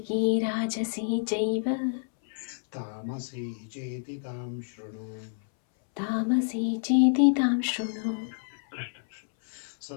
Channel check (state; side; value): silent; right; 59 dB below the other